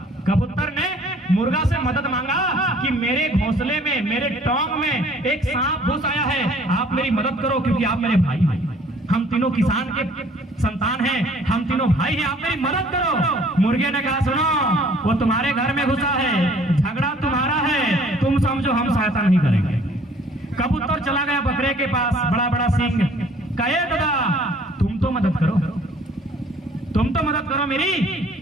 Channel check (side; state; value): both; normal; correlation 0.56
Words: कबूतर ने मुर्गा से मदद मांगा कि मेरे घोंसले में, मेरे टोंग में एक सांप घुस आया है, आप मेरी मदद करो, क्योंकि आप मेरे भाई हैं, हम तीनों किसान के संतान हैं, हम तीनों भाई हैं, आप मेरी मदद करो। मुर्गे ने कहा सुनो, वो तुम्हारे घर में घुसा है, झगड़ा तुम्हारा है, तुम समझो, हम सहायता नहीं करेंगे। कबूतर चला गया बकरे के पास, बड़ा बड़ा सींग, कहे दादा तुम तो मदद करो, तुम तो मदद करो मेरी।